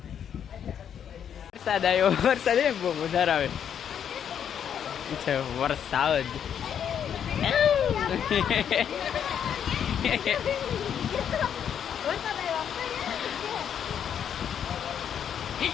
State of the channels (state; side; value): quieter; right; 8.6 dB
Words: વરસાદ આવ્યો, વરસાદ બહુ વધારે આવે છે. વરસાદ